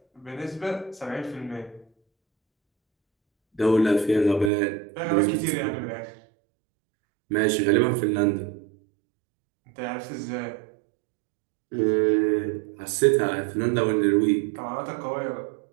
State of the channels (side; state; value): left; drops out; at 4.5 s